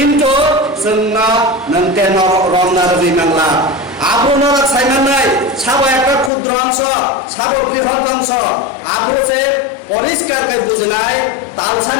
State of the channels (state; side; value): drops out; right; at 6.3 s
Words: जोंना नंते रमनार बिमांला आबुनरा साइमानाय साबो একটা ক্ষুদ্র অংশ সাবো বৃহৎ অংশ আবুছে পরিষ্কার কাই বুঝিনাই